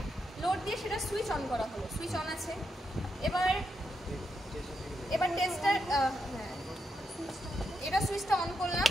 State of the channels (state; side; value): normal; both; correlation 0.83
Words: লোড দিয়ে সেটা সুইচ অন করা হলো, সুইচ অন আছে। এবার টেস্টার এটা সুইচটা অন করলাম,